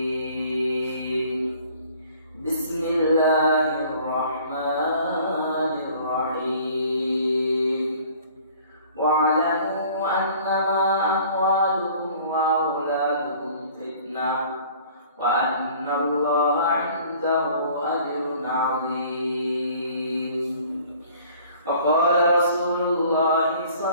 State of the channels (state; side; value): inverted; both; correlation -0.52